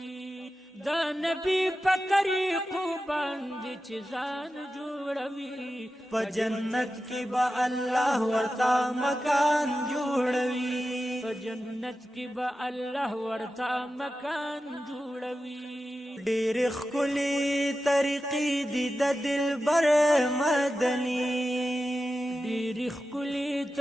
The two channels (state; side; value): normal; both; correlation 0.92